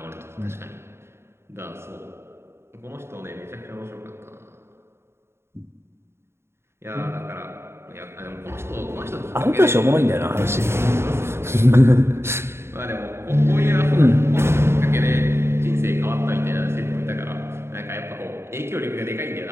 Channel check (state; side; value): late; left; 0.12 ms